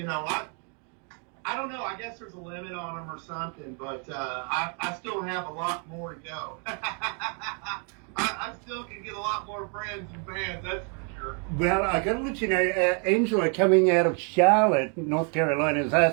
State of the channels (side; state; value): left; quieter; 39.6 dB